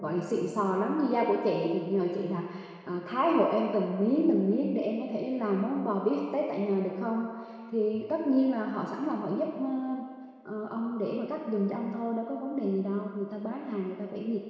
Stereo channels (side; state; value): both; identical; correlation 1.00